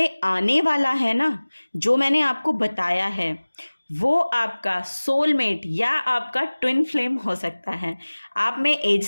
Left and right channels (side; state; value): both; inverted; correlation -1.00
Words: आने वाला है ना, जो मैंने आपको बताया है, वो आपका सोलमेट या आपका ट्विन फ्लेम हो सकता है। आप में एज